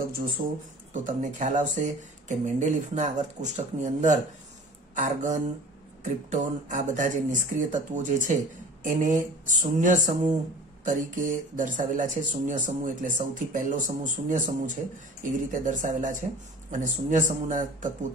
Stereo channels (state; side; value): normal; both; correlation 0.42